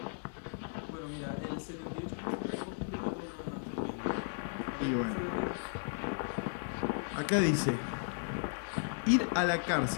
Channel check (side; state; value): right; silent; digital silence